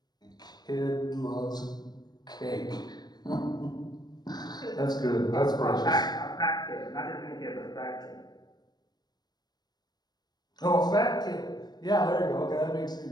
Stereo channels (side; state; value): right; late; 0.20 ms